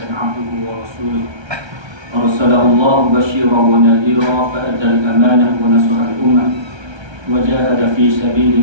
عبده ورسوله أرسله الله بشيرا ونذيرا فأدى الأمانة ونصح الأمة وجاهد في سبيل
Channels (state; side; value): late; left; 1.3 ms